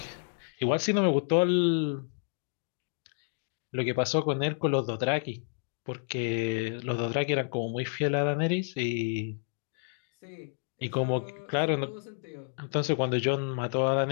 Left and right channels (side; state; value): right; silent; digital silence